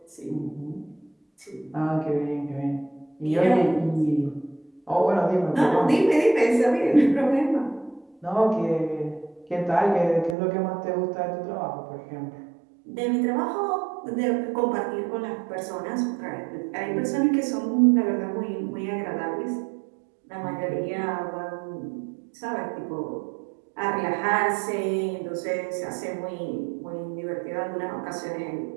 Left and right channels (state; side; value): drops out; left; at 10.4 s